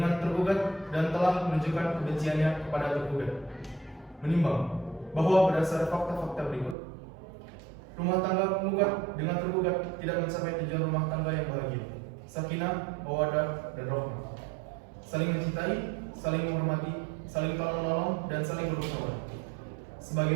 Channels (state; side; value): drops out; left; at 6.8 s